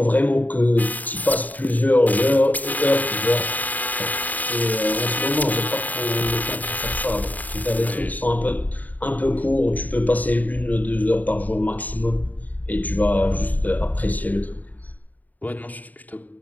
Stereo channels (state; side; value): late; right; 0.079 ms